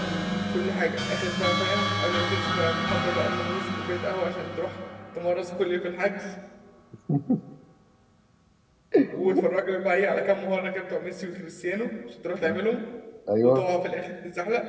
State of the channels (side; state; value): both; identical; correlation 1.00